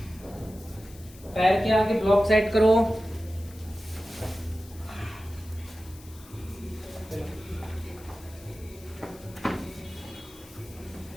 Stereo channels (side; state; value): left; noise; hiss, 22 dB below the sound